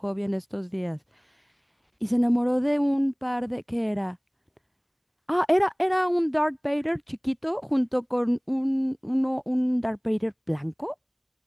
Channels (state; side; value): identical; both; correlation 1.00